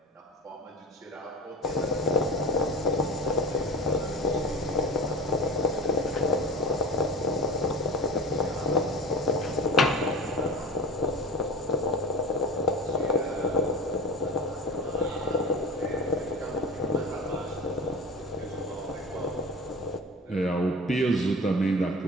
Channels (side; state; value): both; normal; correlation 0.34